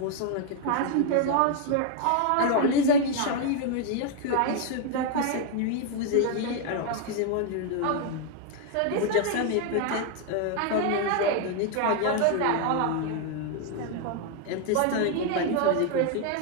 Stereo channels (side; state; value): both; different; correlation 0.01